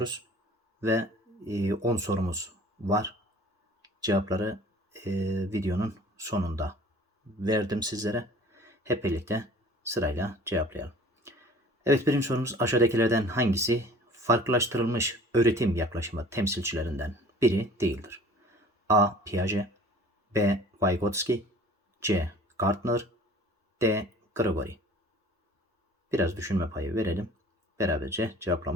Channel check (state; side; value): normal; both; correlation 0.48